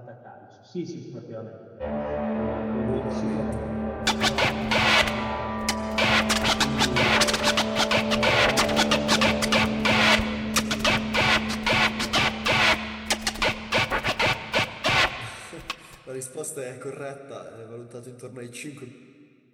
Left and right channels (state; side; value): identical; both; correlation 1.00